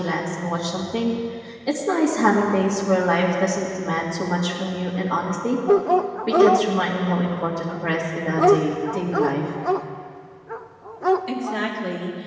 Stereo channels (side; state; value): both; identical; correlation 1.00